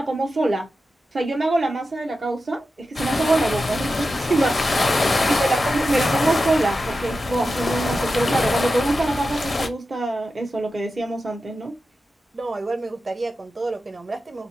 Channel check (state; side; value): normal; both; correlation 0.91